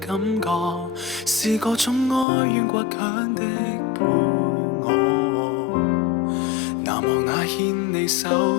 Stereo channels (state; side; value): drops out; right; at 2.2 s